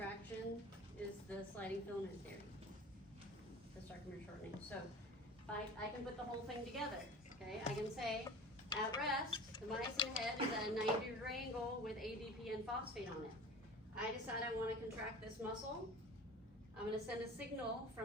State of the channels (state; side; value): normal; both; correlation 0.38